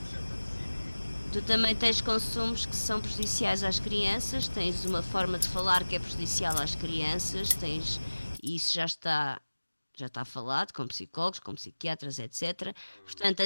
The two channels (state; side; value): inverted; both; correlation -1.00